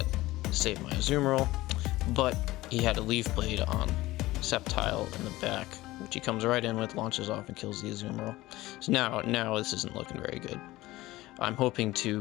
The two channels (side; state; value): right; quieter; 18.0 dB